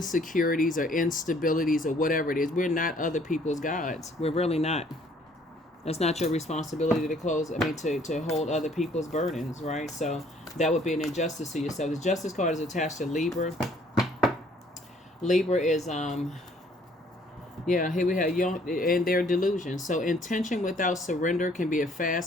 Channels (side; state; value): both; normal; correlation 0.61